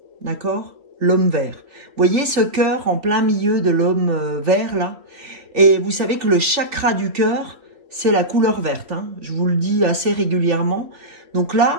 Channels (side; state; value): left; late; 3.4 ms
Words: d'accord? L'homme vert. Vous voyez ce cœur en plein milieu de l'homme vert, là? Et vous savez que le chakra du cœur, c'est la couleur verte. Hein. Je vous le dis assez régulièrement. Donc